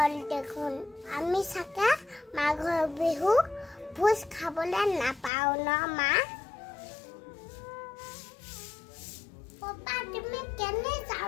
দেখোন আমি চাগে মাঘৰ বিহু ভোজ খাবলৈ নাপাওঁ ন মা পাপা তুমি কেনে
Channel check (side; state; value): right; drops out; at 5.3 s